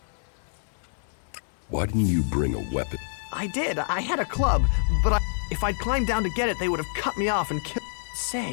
Why didn't you bring a weapon? I did. I had a club, but if I'd climbed down to get it, they would have cut me off and killed...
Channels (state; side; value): silent; right; 60 dB below the other